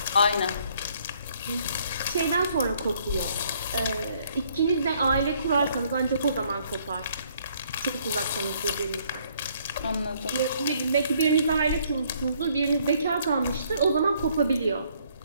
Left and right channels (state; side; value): inverted; both; correlation -0.65